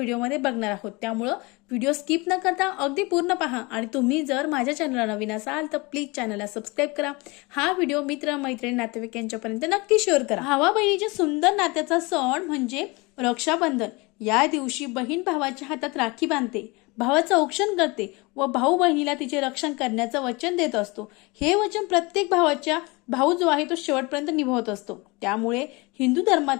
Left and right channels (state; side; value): quieter; right; 25.7 dB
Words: बघणार आहोत. त्यामुळं व्हिडिओ स्किप न करता अगदी पूर्ण पहा आणि तुम्ही जर माझ्या चॅनलला नवीन असाल तर प्लीज चॅनलला सबस्क्राईब करा. हा व्हिडिओ मित्र, मैत्रिणी, नातेवाईक यांच्यापर्यंत नक्की शेअर करा. भावा बहिणीच्या सुंदर नात्याचा सण म्हणजे रक्षाबंधन. या दिवशी बहीण भावाच्या हातात राखी बांधते, भावाचं औक्षण करते व भाऊ बहिणीला तिचे रक्षण करण्याचं वचन देत असतो. हे वचन प्रत्येक भावाच्या भाऊ जो आहे तो शेवटपर्यंत निभावत असतो. त्यामुळे हिंदू